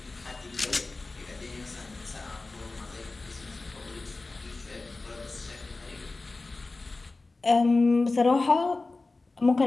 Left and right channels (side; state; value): right; quieter; 3.4 dB